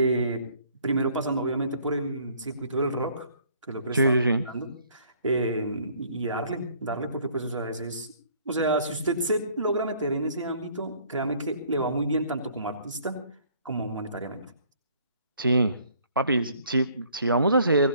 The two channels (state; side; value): inverted; both; correlation -0.60